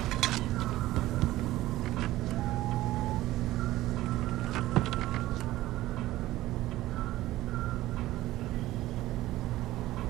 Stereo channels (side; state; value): left; quieter; 16.0 dB